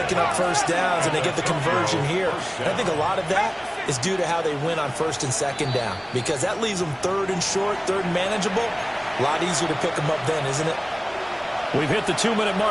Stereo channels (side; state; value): both; identical; correlation 1.00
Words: up first downs, and they get the conversion here. And I think a lot of that is due to how they win on 1st and 2nd down, because that leaves them 3rd and short, 3rd and manageable. A lot easier to pick them up then, isn't it? We've hit the 2-minute